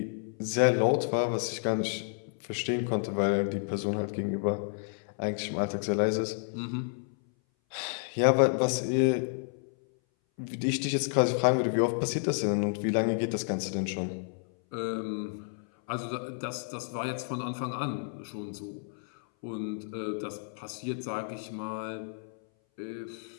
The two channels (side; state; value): right; silent; 57 dB below the other